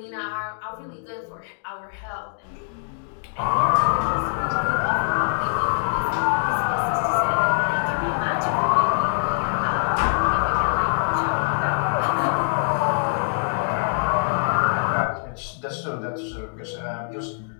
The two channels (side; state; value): right; silent; digital silence